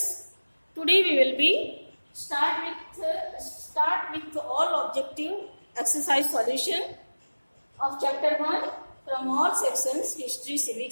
today we will be start with all objective exercise solution of chapter 1 from all sections history,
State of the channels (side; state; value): both; inverted; correlation -1.00